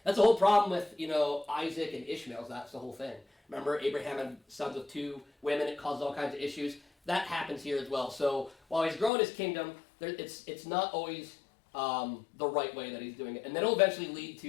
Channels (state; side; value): drops out; right; at 9.1 s